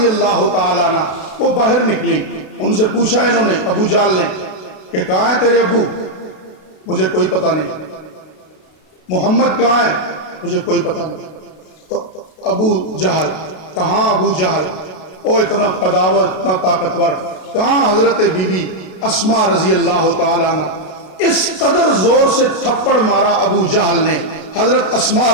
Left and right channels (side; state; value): right; late; 32 ms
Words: اللہ تعالی عنہ وہ باہر نکلی۔ ان سے پوچھا انہوں نے، ابو جہل نے، کہ کہاں ہے تیرے ابو؟ مجھے کوئی پتہ نہیں۔ محمد کہاں ہے؟ مجھے کوئی پتہ نہیں۔ تو ابو جہل کہاں؟ ابو جہل او اتنا قداور، اتنا طاقتور، کہاں حضرت بی بی اسماء رضی اللہ تعالی عنہ؟ اس قدر زور سے تھپڑ مارا ابو جہل نے حضرت اسماء